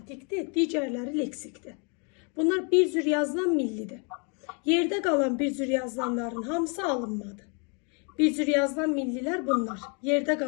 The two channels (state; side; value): quieter; right; 36.2 dB